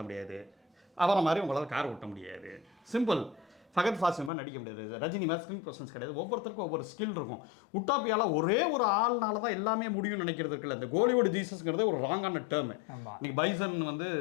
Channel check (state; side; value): drops out; right; at 4.3 s